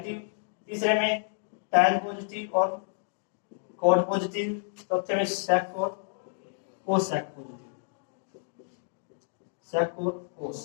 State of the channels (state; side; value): silent; right; digital silence